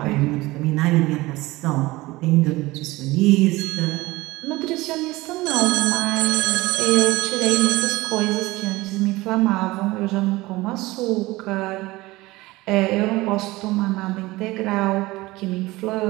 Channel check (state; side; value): quieter; left; 20.0 dB